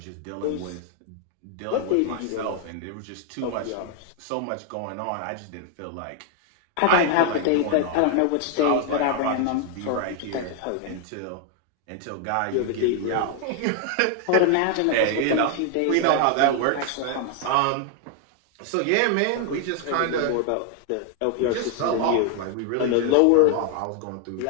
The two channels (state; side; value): different; both; correlation 0.00